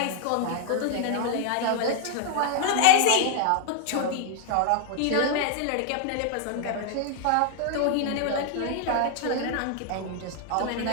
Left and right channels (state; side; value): different; both; correlation 0.00